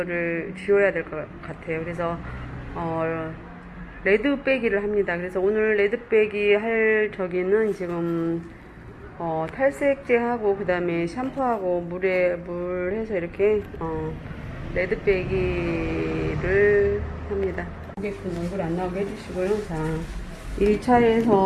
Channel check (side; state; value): both; identical; correlation 1.00